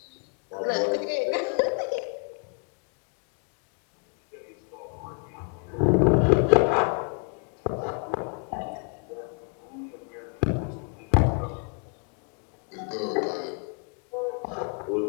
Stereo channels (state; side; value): quieter; right; 36.8 dB